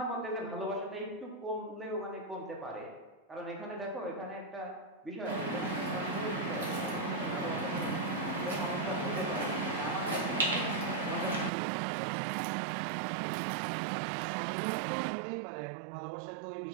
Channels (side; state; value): left; drops out; at 11.5 s